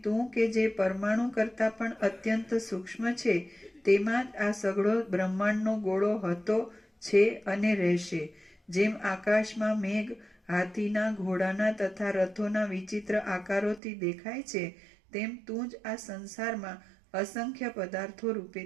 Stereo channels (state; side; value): drops out; left; at 13.8 s